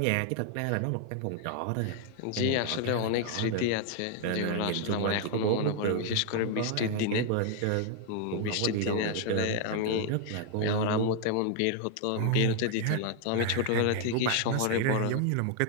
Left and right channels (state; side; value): different; both; correlation 0.00